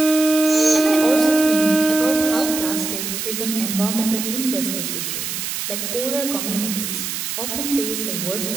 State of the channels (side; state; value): right; noise; hiss, 4 dB below the sound